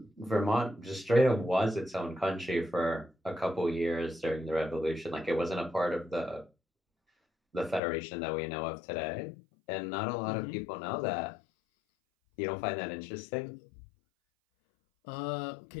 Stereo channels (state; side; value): drops out; right; at 7.8 s